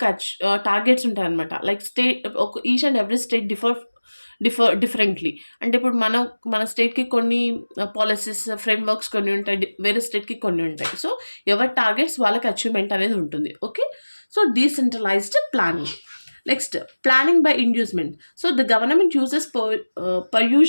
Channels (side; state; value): both; inverted; correlation -1.00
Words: targets ఉంటాయి అనమాట. Like state each and every state differently. అంటే ఇప్పుడు మన స్టేట్కి కొన్ని పాలసీస్ ఫ్రేమ్వర్క్స్ కొన్ని ఉంటాయి, వేరే స్టేట్కి కొన్ని ఉంటాయి. సో ఎవరి టార్గెట్స్ వాళ్ళకి అచీవ్మెంట్ అనేది ఉంటుంది. Okay. So decentralised planning. Next, planning by inducement. So the government uses